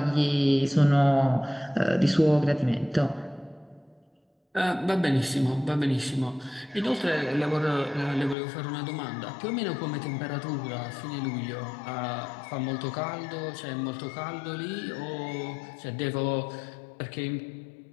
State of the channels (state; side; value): drops out; right; at 8.3 s